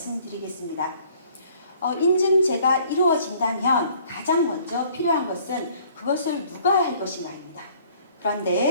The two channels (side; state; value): both; inverted; correlation -0.58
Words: 인증제가 이루어진다면 가장 먼저 필요한 것은 그것을 누가 할 것인가입니다.